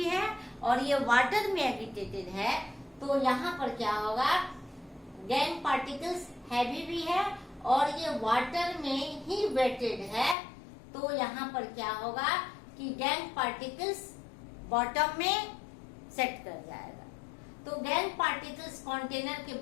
है और ये वाटर में एगिटेटेड है, तो यहाँ पर क्या होगा, गैंग पार्टिकल्स हैवी भी है और ये वाटर में ही वेटेड है, तो यहाँ पर क्या होगा कि गैंग पार्टिकल्स बॉटम में सेट कर जाएगा। तो गैंग पार्टिकल्स कंटेनर के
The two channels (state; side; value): drops out; right; at 10.4 s